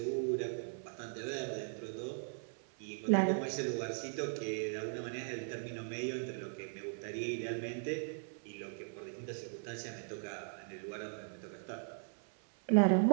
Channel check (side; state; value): left; silent; 52 dB below the other